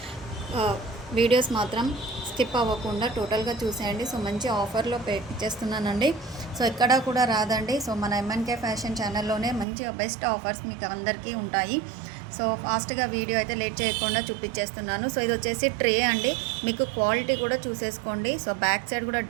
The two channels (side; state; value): left; drops out; at 9.7 s